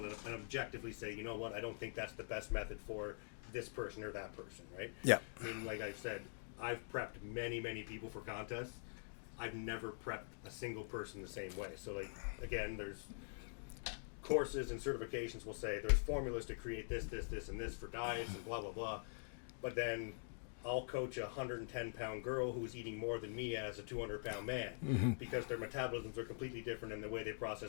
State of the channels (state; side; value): silent; right; digital silence